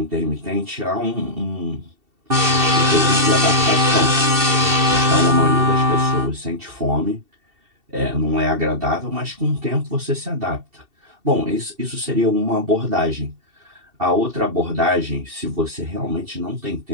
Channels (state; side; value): late; left; 2.7 ms